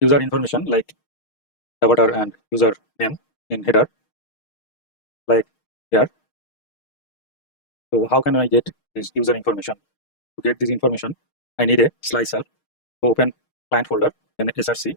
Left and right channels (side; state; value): right; late; 6.5 ms